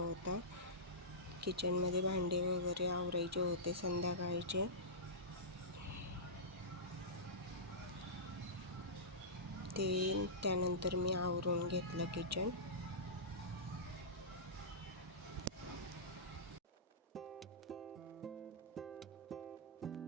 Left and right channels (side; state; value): both; normal; correlation -0.17